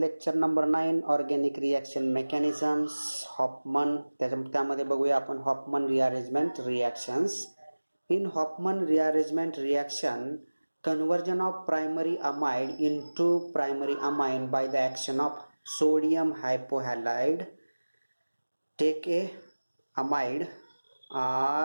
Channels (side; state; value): both; inverted; correlation -1.00